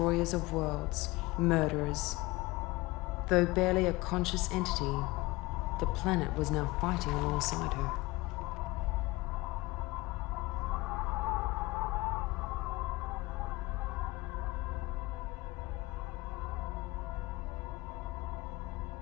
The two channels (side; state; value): right; quieter; 21.4 dB